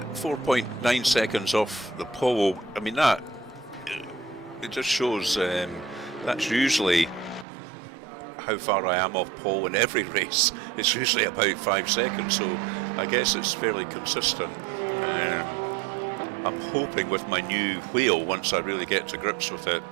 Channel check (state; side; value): drops out; left; at 7.5 s